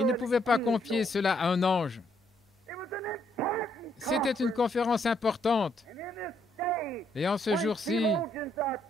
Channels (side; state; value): both; normal; correlation 0.72